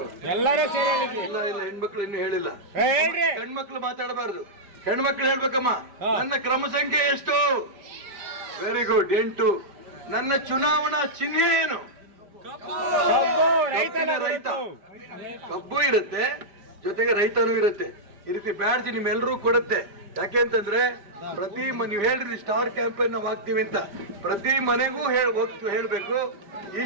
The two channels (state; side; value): late; left; 5.0 ms